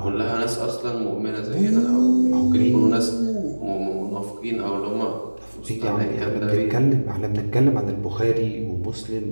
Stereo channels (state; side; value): inverted; both; correlation -1.00